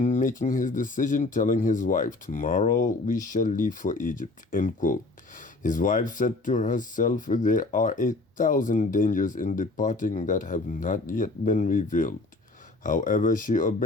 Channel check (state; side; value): quieter; right; 3.2 dB